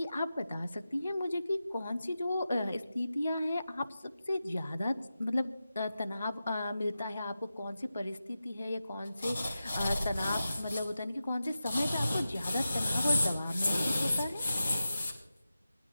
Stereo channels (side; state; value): both; inverted; correlation -0.92